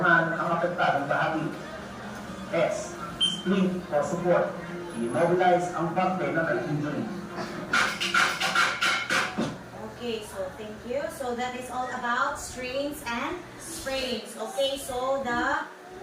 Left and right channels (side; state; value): both; identical; correlation 1.00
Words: ang apektadong bahagi. S. Splint o support. I-mobilize ang parte na may injury. Okay, so thank you. So that is all about strains and sprains. Okay, so the